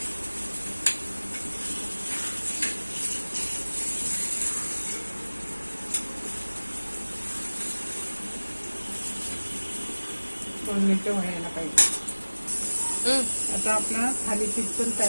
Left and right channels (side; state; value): both; inverted; correlation -1.00